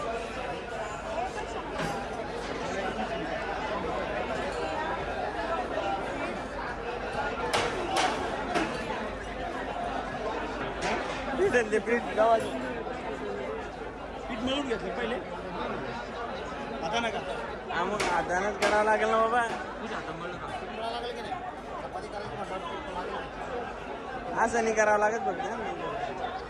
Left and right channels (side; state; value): both; identical; correlation 1.00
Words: पीठ गावाची पीठ मिळून घेतलं पहिले, आता नका. हा मग हातानंच करावं लागेल ना बाबा. असं नाही करावं लागत फक्त.